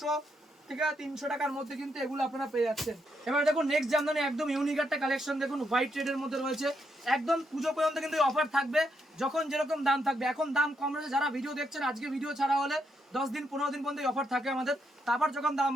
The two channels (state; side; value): normal; both; correlation 0.79